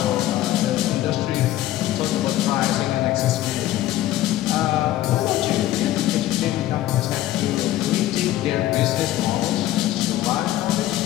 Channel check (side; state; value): right; quieter; 14.4 dB